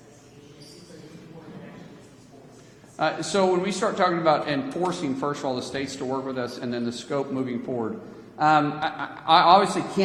So when we start talking about enforcing, first of all, the states to work with us and then the scope moving forward, I obviously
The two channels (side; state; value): both; identical; correlation 1.00